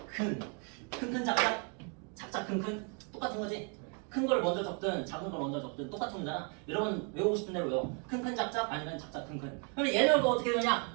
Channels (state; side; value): quieter; left; 37.5 dB